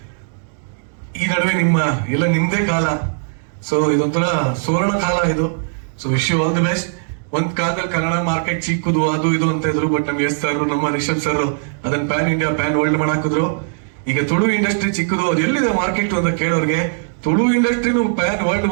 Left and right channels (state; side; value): silent; left; digital silence